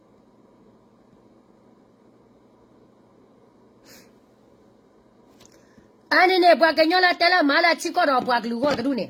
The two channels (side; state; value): both; identical; correlation 1.00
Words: အနေနဲ့ဘွားကညောလာတဲလာမာလာချီကောတော့ဘွားကလူကောတူနေ